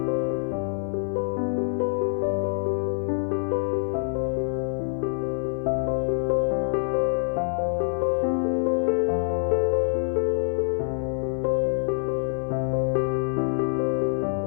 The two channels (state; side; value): silent; right; 55 dB below the other